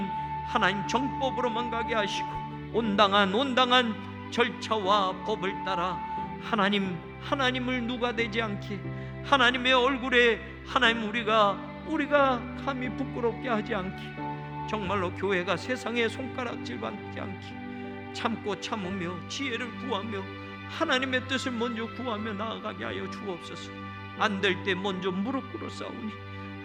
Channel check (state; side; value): identical; both; correlation 1.00